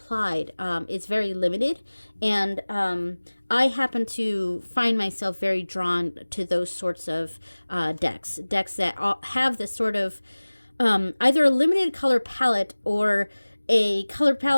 is very limited, and I happen to find myself very drawn to those sorts of decks that have this sort of either a limited color palette or a color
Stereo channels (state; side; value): inverted; both; correlation -1.00